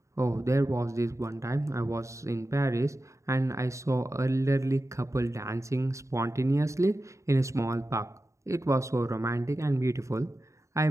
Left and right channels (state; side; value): late; left; 0.15 ms